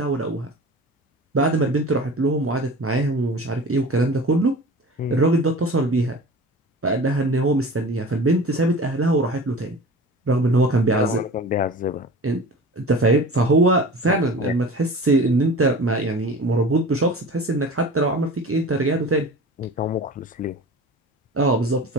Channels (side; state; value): both; normal; correlation 0.37